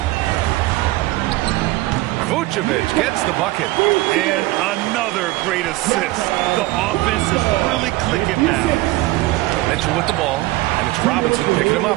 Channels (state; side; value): quieter; left; 19.0 dB